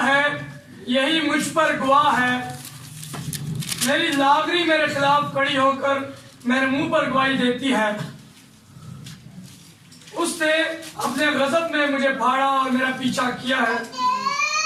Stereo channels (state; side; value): identical; both; correlation 1.00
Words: है, यही मुझ पर गवाह है, मेरी लागरी मेरे खिलाफ खड़ी होकर मेरे मुंह पर गवाही देती है। उसने अपने गजब में मुझे फाड़ा और मेरा पीछा किया है।